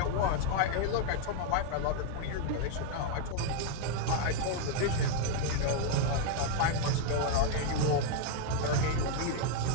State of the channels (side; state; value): both; different; correlation 0.00